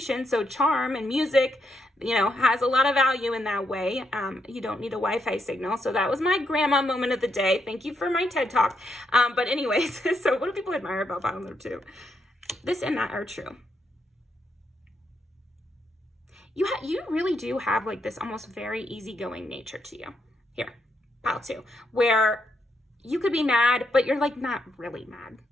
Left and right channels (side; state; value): both; normal; correlation 0.79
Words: So charm and music, you know, has a lot of value in that way. You don't need a Wi-Fi signal. So that was my grandma moment of the day. Thank you for my TED Talk. But anyways, so what do people admire about pile number 2? This and that are true. You really do have like this almost very easygoing nature to you. Here, pile 2, where you could be mad, but you're like not really mad.